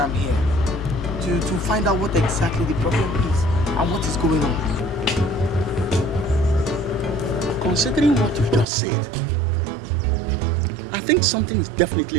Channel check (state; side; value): drops out; left; at 8.7 s